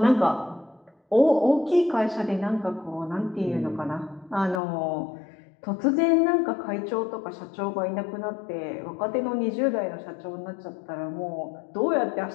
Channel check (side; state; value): right; drops out; at 4.6 s